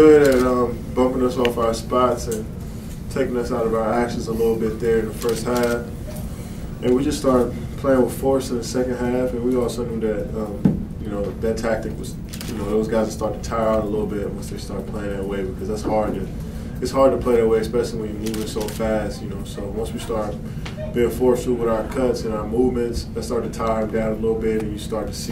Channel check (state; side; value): identical; both; correlation 1.00